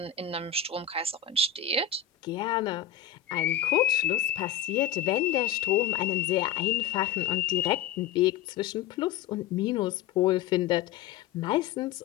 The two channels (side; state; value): right; quieter; 9.3 dB